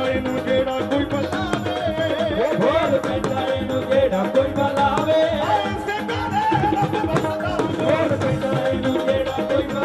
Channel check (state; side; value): identical; both; correlation 1.00